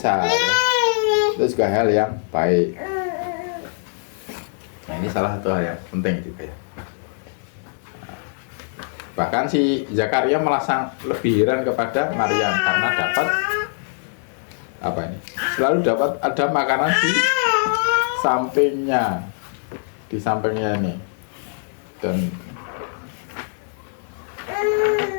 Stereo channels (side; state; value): right; silent; digital silence